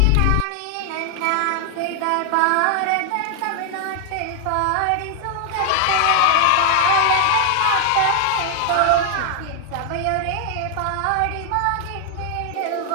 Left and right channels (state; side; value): different; both; correlation 0.00